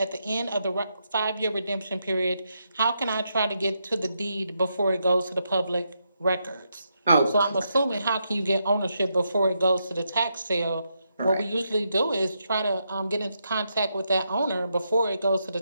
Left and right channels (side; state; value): both; inverted; correlation -0.82